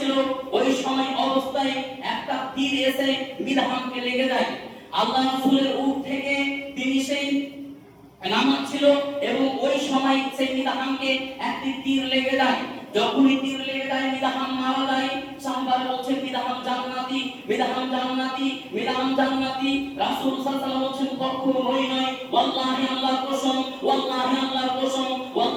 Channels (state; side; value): identical; both; correlation 1.00